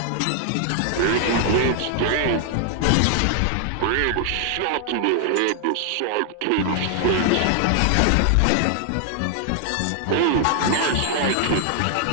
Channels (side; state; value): both; different; correlation 0.00